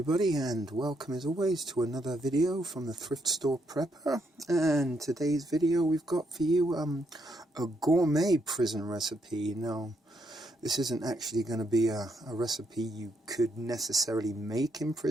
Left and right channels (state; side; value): normal; both; correlation 0.76